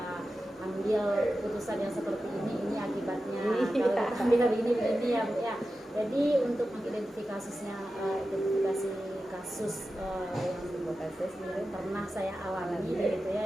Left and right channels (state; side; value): normal; both; correlation 0.92